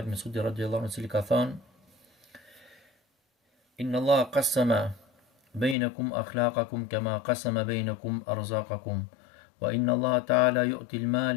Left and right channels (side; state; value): right; drops out; at 5.8 s